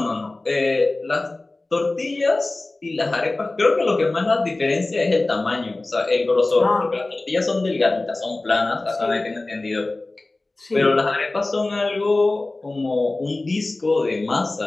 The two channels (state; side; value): quieter; right; 3.0 dB